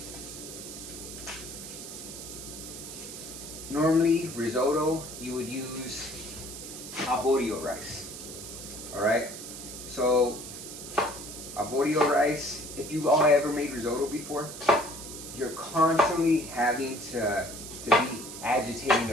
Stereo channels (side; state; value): right; noise; hiss, 11 dB below the sound